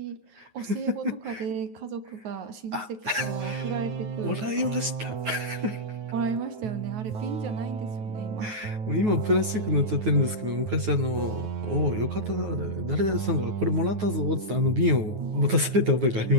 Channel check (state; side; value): late; left; 9.4 ms